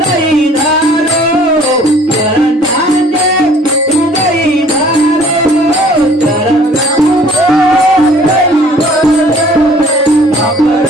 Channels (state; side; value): normal; both; correlation 0.54